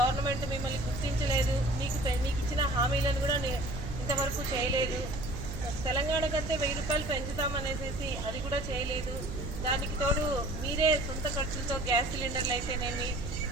మిమ్మల్ని గుర్తించలేదు, మీకు ఇచ్చిన హామీలను కూడా ఇంతవరకు చేయలేదు. తెలంగాణ కంటే 1000 రూపాయలు పెంచుతామనేసి అది కూడా చేయలేదు. దానికి తోడు మీరే సొంత ఖర్చులతో గ్యాస్ సిలిండర్లు అయితేనేమి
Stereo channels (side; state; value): right; noise; hum, 8 dB below the sound